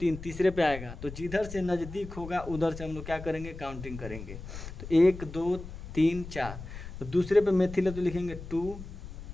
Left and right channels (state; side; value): noise; left; rumble, 11 dB below the sound